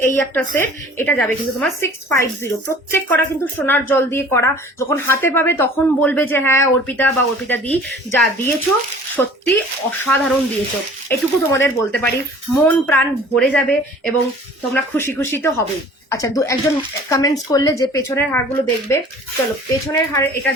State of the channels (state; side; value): normal; both; correlation 0.48